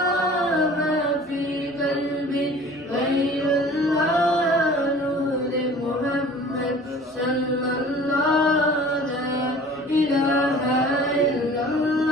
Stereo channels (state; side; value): normal; both; correlation 0.46